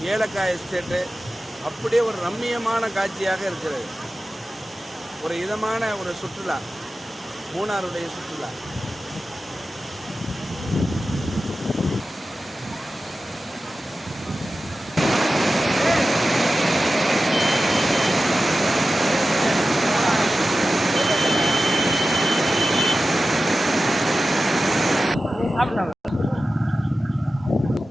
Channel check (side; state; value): both; normal; correlation 0.94